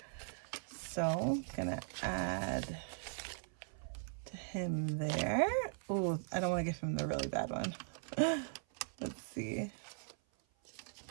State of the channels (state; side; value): silent; left; 51 dB below the other